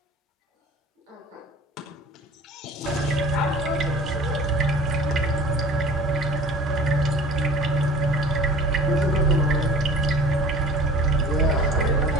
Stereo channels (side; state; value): both; normal; correlation 0.44